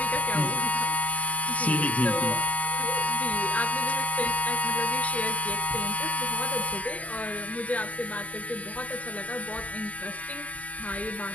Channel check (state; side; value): late; right; 0.074 ms